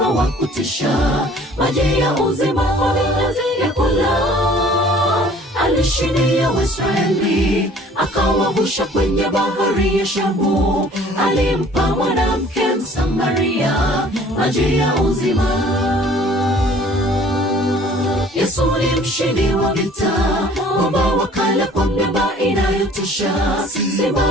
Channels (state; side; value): normal; both; correlation 0.53